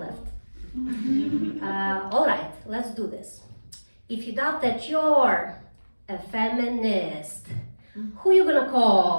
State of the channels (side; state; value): both; inverted; correlation -1.00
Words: All right, let's do this. If you doubt that you're a feminist, who you gonna